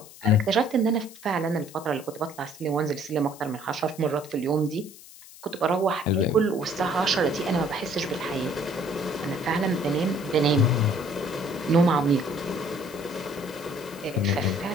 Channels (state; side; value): noise; left; hiss, 19 dB below the sound